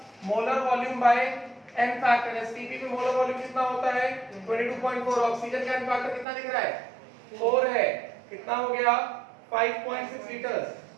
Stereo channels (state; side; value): drops out; left; at 6.2 s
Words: Molar volume by N factor. STP पे मोलर वॉल्यूम कितना होता है? 22.4। ऑक्सीजन का एन फैक्टर कितना दिख रहा है? 4 है। कितना हो गया? 5.6 लीटर्स।